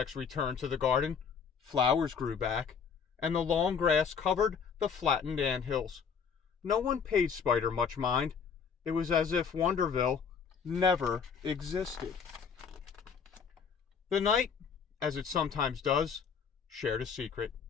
returned to the garden. Flowers grew back, and the long grass covered the flattened anthills. No one paid Spider much mind. It was as if Wonderville never existed. The night, as it sometimes does, shared a secret.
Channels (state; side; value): quieter; right; 6.4 dB